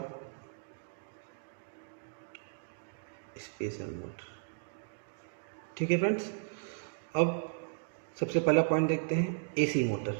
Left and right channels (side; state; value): left; silent; digital silence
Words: स्पेशल मोटर। ठीक है फ्रेंड्स, अब सबसे पहला पॉइंट देखते हैं AC motor.